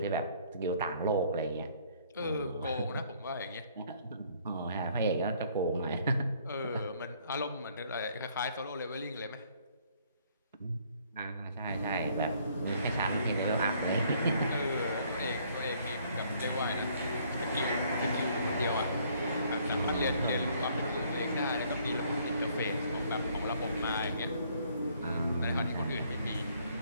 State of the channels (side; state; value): both; inverted; correlation -0.63